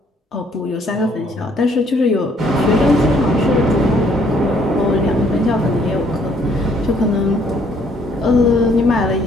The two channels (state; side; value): normal; both; correlation 0.65